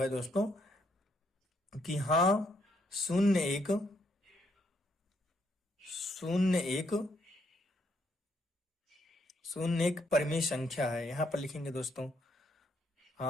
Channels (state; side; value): normal; both; correlation 0.74